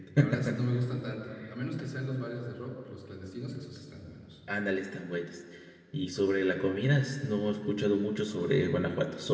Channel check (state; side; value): identical; both; correlation 1.00